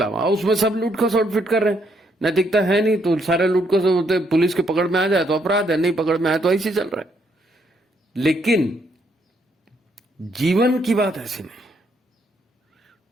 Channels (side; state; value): both; normal; correlation 0.73